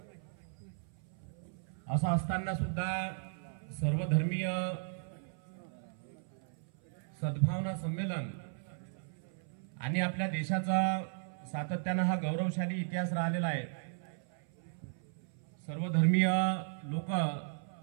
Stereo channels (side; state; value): left; silent; 54 dB below the other